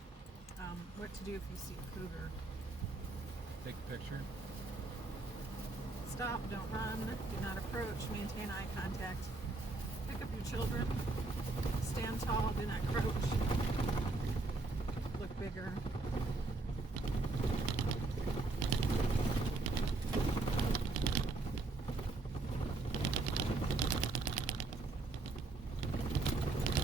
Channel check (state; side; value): quieter; left; 3.3 dB